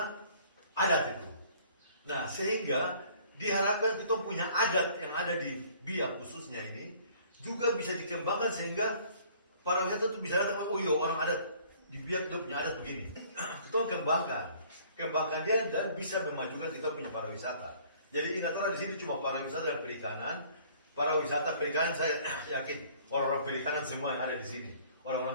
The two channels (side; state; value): both; inverted; correlation -0.56